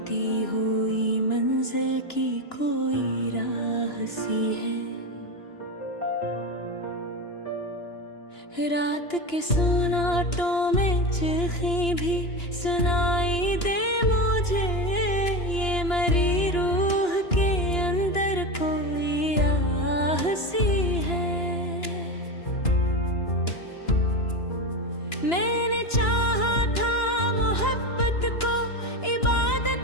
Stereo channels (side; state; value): right; late; 2.9 ms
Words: हुई मंजिल की कोई राह सी है। रात के सुनाटों में चीखें भी सुनाई दे मुझे, ये मरी रूह के अंदर कोई आह सी है। मैंने चाहा था मोहब्बत को